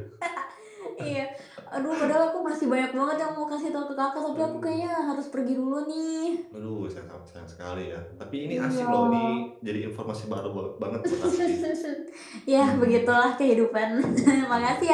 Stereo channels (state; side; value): identical; both; correlation 1.00